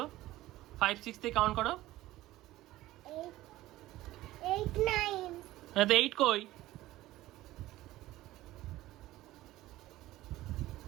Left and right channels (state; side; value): quieter; left; 16.3 dB